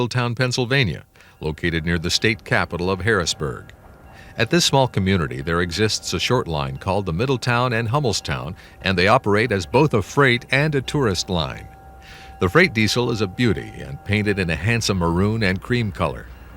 Pennsylvania, located near the state capital of Harrisburg. At this small community, there exists a short line called the Middletown and Hummelstown, and they operate as both a freight and a tourist line. The freight diesel is a beauty and painted in a handsome maroon and cream color.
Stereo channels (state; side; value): identical; both; correlation 1.00